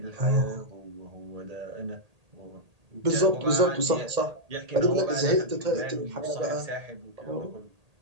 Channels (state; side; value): late; left; 1.8 ms